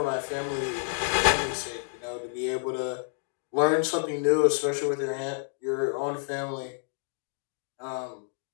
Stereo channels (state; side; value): silent; right; 59 dB below the other